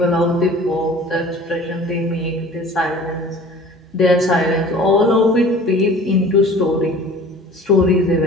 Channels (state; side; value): normal; both; correlation 0.45